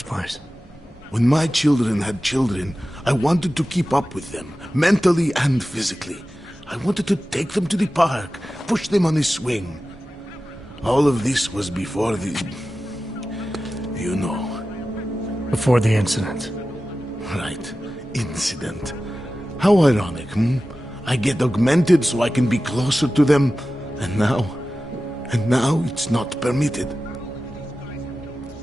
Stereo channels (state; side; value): normal; both; correlation 0.94